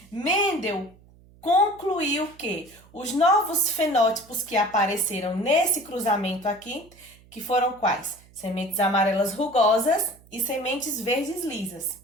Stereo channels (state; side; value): noise; right; hum, 26 dB below the sound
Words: Mendel concluiu que os novos fenótipos que apareceram nesse cruzamento aqui, que foram quais? Sementes amarelas rugosas e sementes verdes lisas,